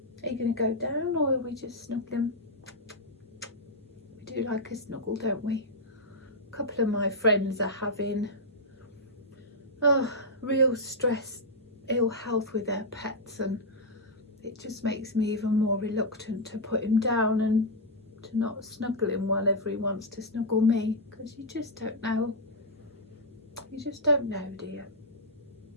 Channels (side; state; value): both; normal; correlation -0.04